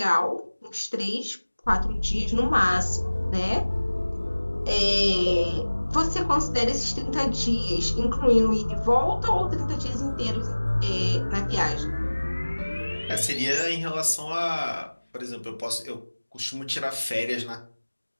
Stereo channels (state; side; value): inverted; both; correlation -1.00